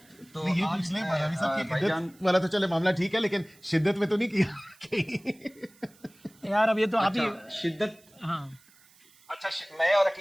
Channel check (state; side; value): noise; right; hiss, 28 dB below the sound